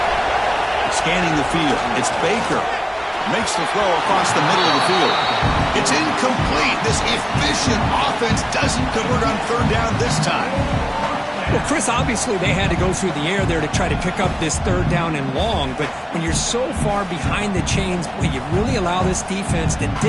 Scanning the field. It's Baker. Makes the throw across the middle of the field. It's incomplete. This efficient offense doesn't convert on third down this time. Well, Chris, obviously they had to go through the air there to try to pick up this third down and long, but when you're so far behind the chains, well, you really allow this defense to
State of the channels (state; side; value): identical; both; correlation 1.00